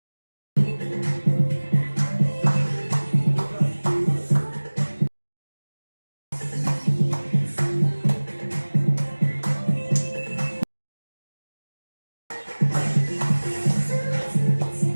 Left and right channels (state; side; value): inverted; both; correlation -1.00